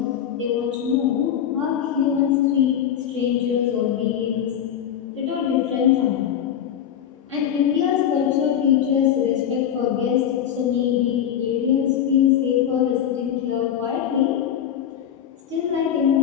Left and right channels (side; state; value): right; quieter; 9.6 dB